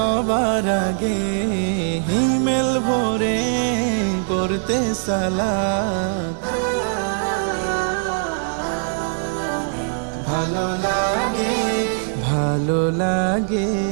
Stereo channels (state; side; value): silent; left; 57 dB below the other